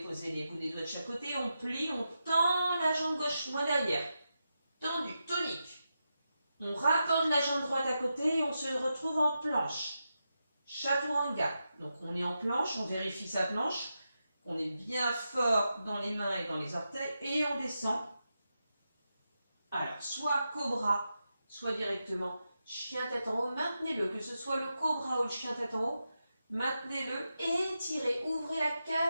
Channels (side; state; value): both; inverted; correlation -0.88